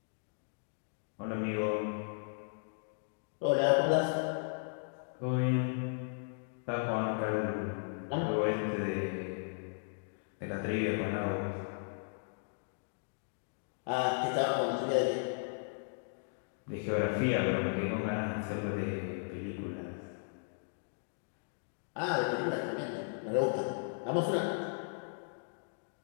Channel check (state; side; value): silent; right; digital silence